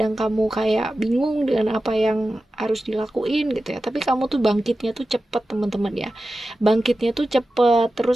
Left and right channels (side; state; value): both; normal; correlation 0.93